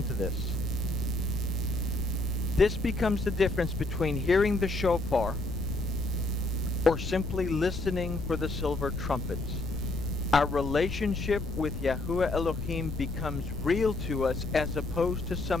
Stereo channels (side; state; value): left; noise; rumble, 6 dB below the sound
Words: to this. This becomes the difference between hearing the shofar or simply listening for the silver trumpets. Our relationship with Yahuwah Elohim becomes real to us as opposed to